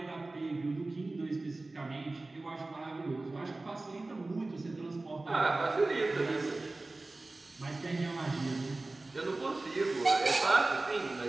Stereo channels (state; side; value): quieter; left; 3.1 dB